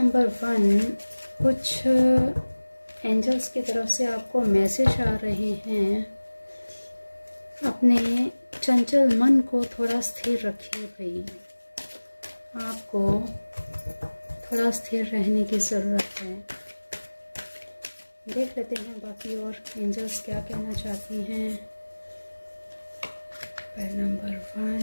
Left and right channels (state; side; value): inverted; both; correlation -1.00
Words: 1, कुछ एंजल्स की तरफ से आपको मैसेज आ रहे हैं। अपने चंचल मन को थोड़ा स्थिर रखिए भाई, आपको थोड़ा स्थिर रहने की ज़रूरत है। देख लेते हैं बाकी और एंजल्स क्या कहना चाहती हैं। पाइल नंबर